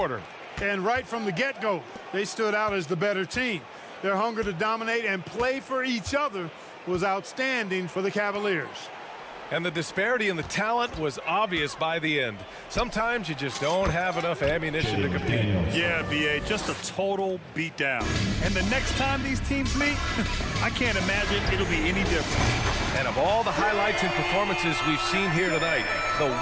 And right from the get-go, they stood out as the better team. Their hunger to dominate and play for each other was outstanding for the Cavaliers. And the disparity in the talent was obvious by the end. Sometimes you just don't have enough ammunition to compete. Yeah, B.A., just a total beatdown. And the next time these teams meet, I can't imagine it'll be any different. And of all the highlights and performances we've seen here tonight, the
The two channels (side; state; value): both; identical; correlation 1.00